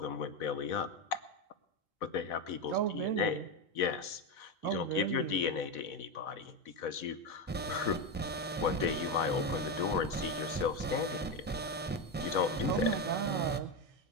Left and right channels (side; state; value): both; normal; correlation 0.12